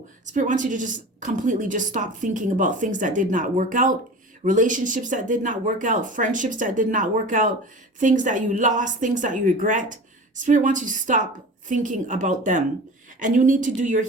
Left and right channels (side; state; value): both; normal; correlation 0.36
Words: Spirit wants you to just completely just stop thinking about things that did not work out, relationships that did not work out, friendships that did not work out, things that you lost, things that you regret. Spirit wants you to stop thinking about them. And you need to do your